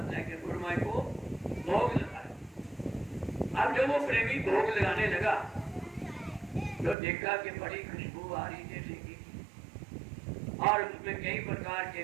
है कि गुरु महाराज को भोग लगाए। अब जब वो प्रेमी भोग लगाने लगा तो देखा कि बड़ी खुशबू आ रही जैसे की, और उसमें कई प्रकार के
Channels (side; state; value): left; drops out; at 7.0 s